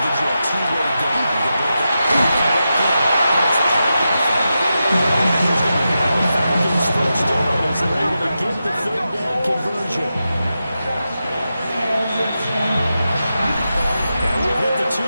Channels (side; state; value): both; inverted; correlation -0.89